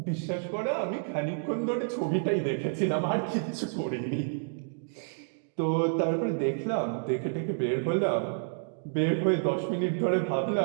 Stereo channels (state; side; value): silent; left; digital silence